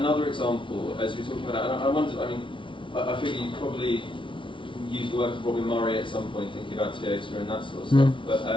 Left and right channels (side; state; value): right; late; 0.25 ms